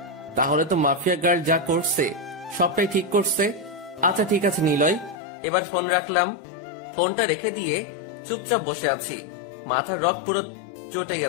তাহলে তো মাফিয়া গার্ল যা করছে সবটাই ঠিক করছে। আচ্ছা ঠিক আছে নিলয়, এবার ফোন রাখলাম। ফোনটা রেখে দিয়ে চুপচাপ বসে আছি। মাথার রক পুরো চটে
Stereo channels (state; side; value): drops out; right; at 5.2 s